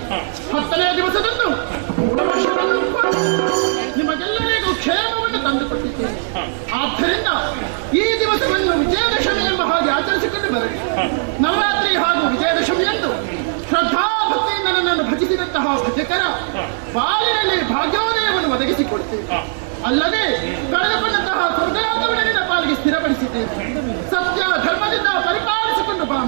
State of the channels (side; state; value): left; silent; digital silence